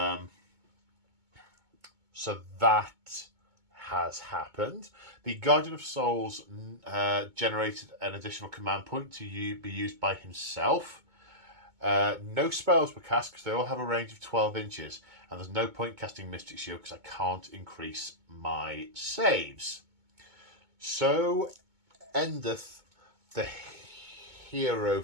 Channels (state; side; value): late; left; 2.2 ms